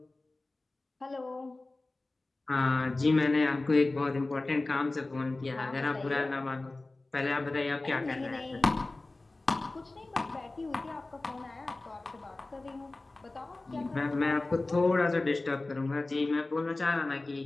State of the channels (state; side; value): quieter; right; 3.1 dB